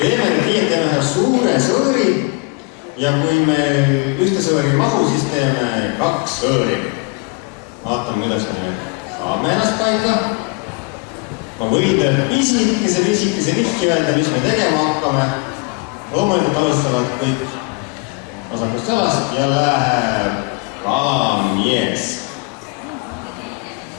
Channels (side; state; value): right; quieter; 29.1 dB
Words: Teeme nüüd nii, et teeme ühe suure sõõri ja kui meil ühte sõõri ei mahu, siis teeme 2 sõõri. Vaatame, kuidas me saame ennast paika. Ma võin teile pisikese vihki öelda, mis me tegema hakkame. Loomulikult alustavad kõik vasakust jalast ja läheb kalamies.